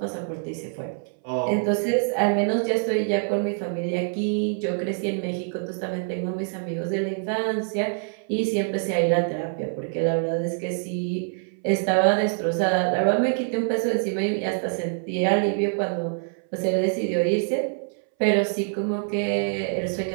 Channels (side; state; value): left; silent; 61 dB below the other